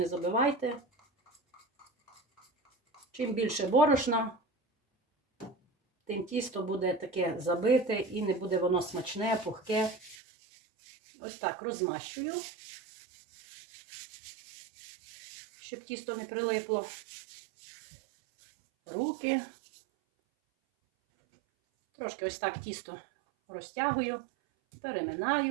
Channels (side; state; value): left; drops out; at 10.2 s